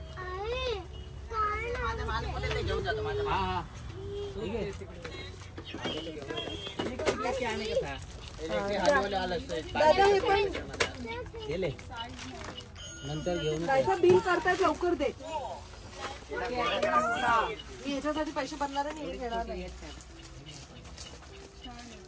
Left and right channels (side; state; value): both; identical; correlation 1.00